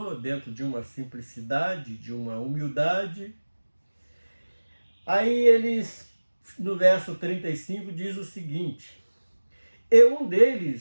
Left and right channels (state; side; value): inverted; both; correlation -1.00